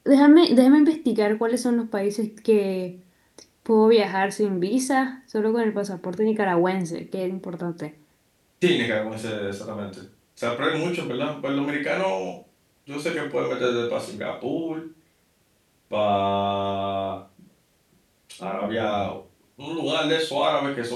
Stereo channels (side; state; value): both; identical; correlation 1.00